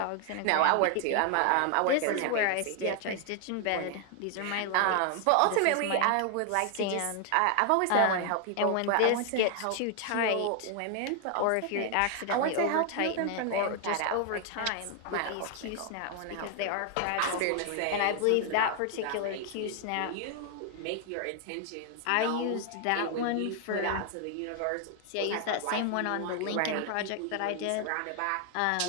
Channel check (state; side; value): different; both; correlation 0.00